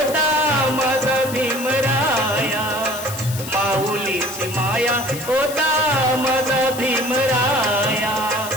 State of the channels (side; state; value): left; noise; hiss, 11 dB below the sound